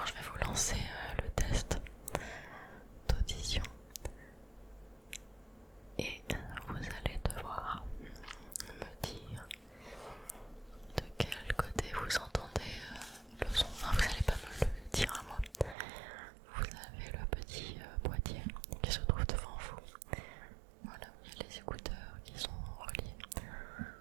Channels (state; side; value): drops out; left; at 15.8 s